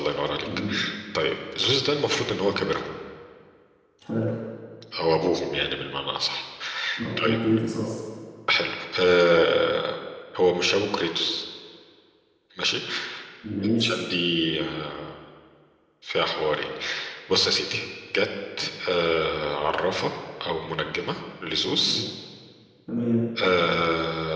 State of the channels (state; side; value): identical; both; correlation 1.00